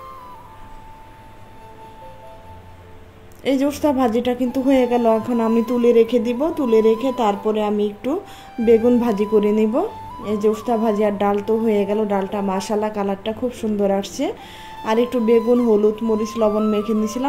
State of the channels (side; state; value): both; identical; correlation 1.00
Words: এই যে উস্তা ভাজিটা কিন্তু হয়ে গেল, এখন আমি তুলে রেখে দিব। তুলে রেখে তারপরে আমি একটু বেগুন ভাজি করে নিব। এই যে উস্তা ভাজি আর ডাল তো হয়ে গেল, ডালটা মাশাআল্লাহ কালারটা খুব সুন্দর আসছে। আর একটু বেগুন, হলুদ, মরিচ, লবণ মেখে